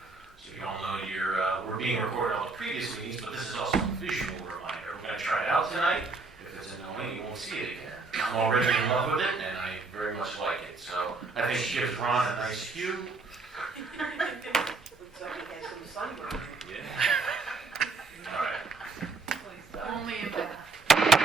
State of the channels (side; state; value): left; quieter; 3.8 dB